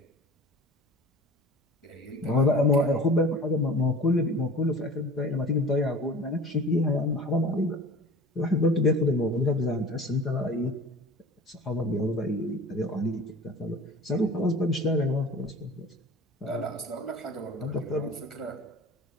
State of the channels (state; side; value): normal; both; correlation 0.40